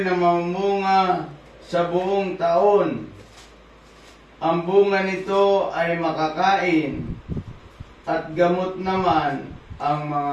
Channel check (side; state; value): both; identical; correlation 1.00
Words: na mamunga sa buong taon. Ang bunga nito ay makakain at gamot naman ang